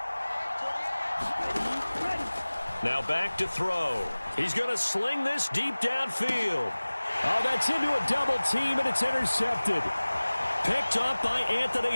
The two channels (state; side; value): inverted; both; correlation -1.00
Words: Now back to throw. He's going to sling this deep downfield. Oh, that's into a double team, and it's intercepted. Picked up by